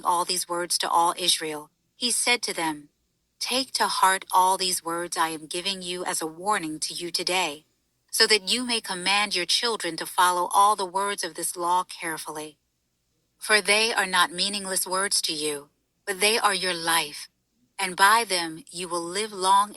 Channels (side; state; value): both; identical; correlation 1.00